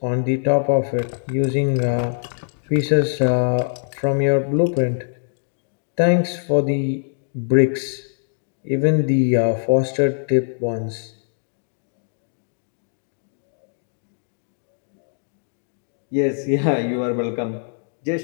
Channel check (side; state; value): right; silent; digital silence